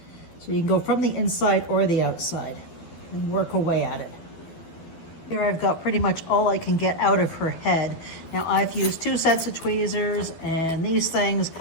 So you can go from the inside or the outside and work away at it. Here I've got pretty much all I can get out of her head. Now I've used 2 sets of tweezers and these things.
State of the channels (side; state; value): right; late; 12 ms